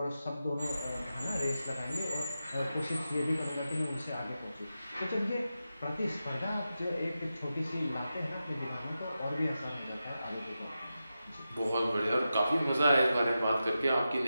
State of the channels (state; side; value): inverted; both; correlation -0.91